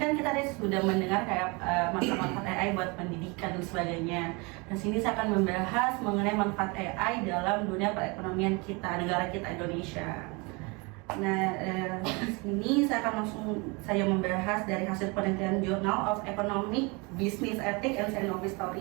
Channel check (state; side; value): quieter; left; 28.4 dB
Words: kan kita tadi sudah mendengar kayak manfaat-manfaat AI buat pendidikan dan sebagainya. Dan sini saya akan membahas mengenai manfaat AI dalam dunia perekonomian kita, negara kita Indonesia. Nah, di sini saya akan langsung membahas dari hasil penelitian Journal of Economic Business Ethics and Scientific